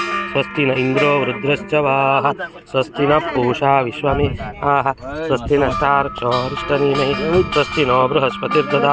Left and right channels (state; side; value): identical; both; correlation 1.00